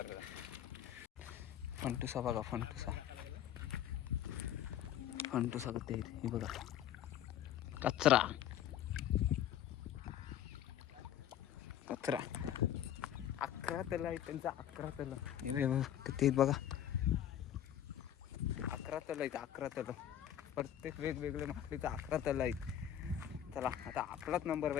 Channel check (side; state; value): right; quieter; 10.6 dB